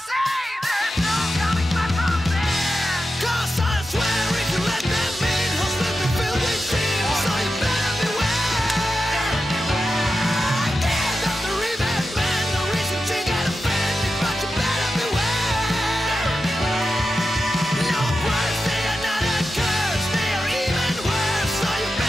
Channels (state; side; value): normal; both; correlation 0.91